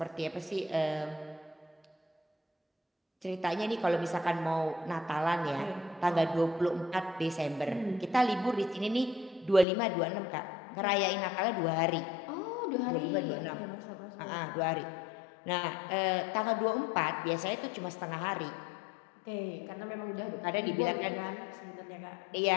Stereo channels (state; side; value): drops out; right; at 9.7 s